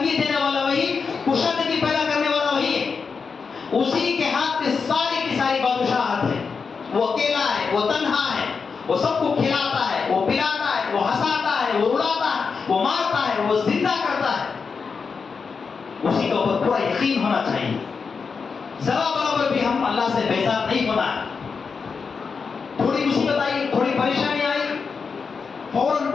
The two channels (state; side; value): quieter; right; 5.3 dB